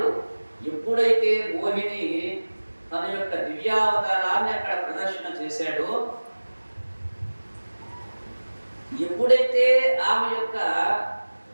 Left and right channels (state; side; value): inverted; both; correlation -1.00